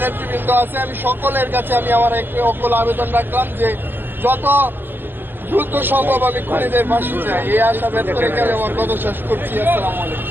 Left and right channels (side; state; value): left; late; 0.093 ms